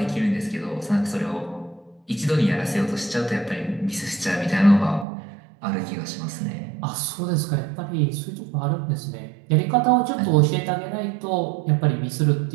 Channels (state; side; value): drops out; left; at 5.1 s